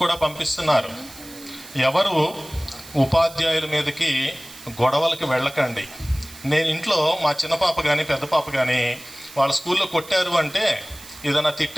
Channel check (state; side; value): noise; right; hiss, 18 dB below the sound